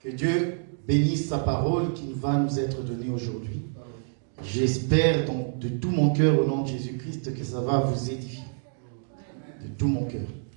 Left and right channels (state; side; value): silent; left; digital silence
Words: Dieu bénisse sa parole qui va nous être donnée aujourd'hui. J'espère donc de tout mon cœur au nom de Jésus-Christ que ça va vous édifier. De tout mon cœur.